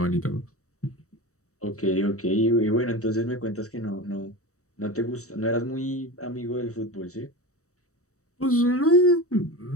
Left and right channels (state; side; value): late; right; 0.65 ms